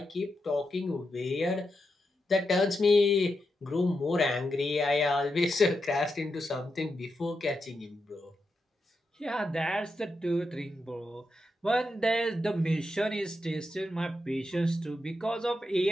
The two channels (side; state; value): both; normal; correlation 0.86